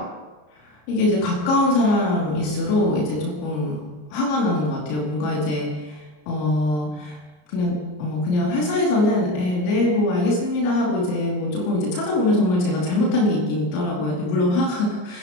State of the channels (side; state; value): right; late; 33 ms